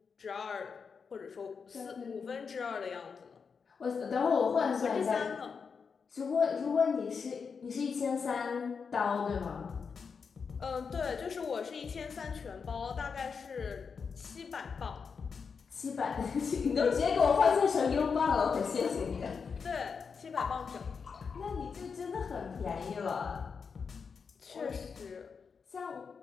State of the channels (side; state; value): right; quieter; 5.7 dB